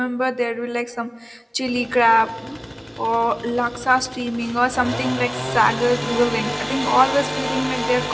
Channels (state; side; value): identical; both; correlation 1.00